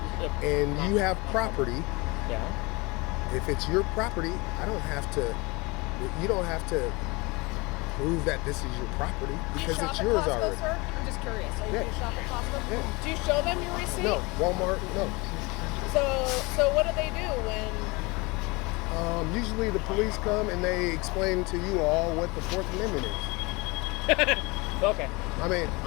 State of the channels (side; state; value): right; quieter; 25.6 dB